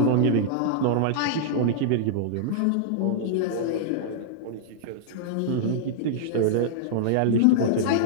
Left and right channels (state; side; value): different; both; correlation -0.02